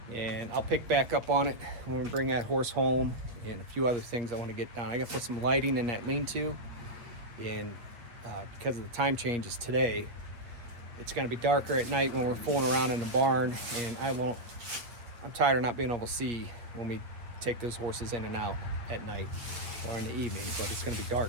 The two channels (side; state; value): left; late; 8.2 ms